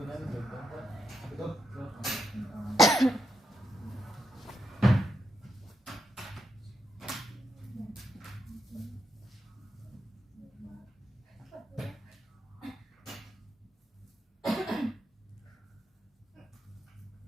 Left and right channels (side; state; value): both; normal; correlation 0.82